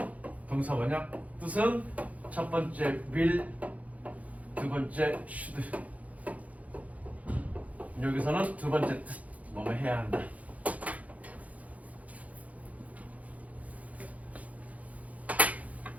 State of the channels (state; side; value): late; left; 0.070 ms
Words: 동사 뭐냐? 뜻은 첫 번째 will, 두 번째 should. 여기서는 두 번째 뜻, 뭐뭐 해야 한다.